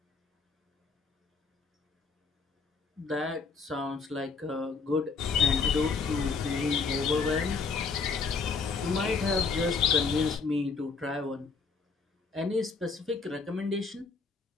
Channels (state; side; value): quieter; right; 4.7 dB